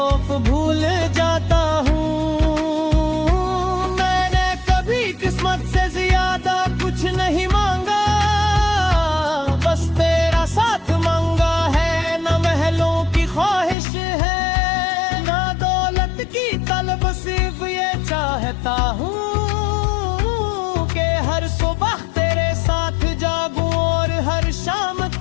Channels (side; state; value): right; drops out; at 13.8 s